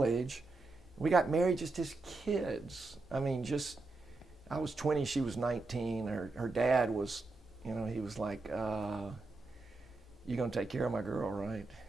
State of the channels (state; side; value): quieter; left; 3.4 dB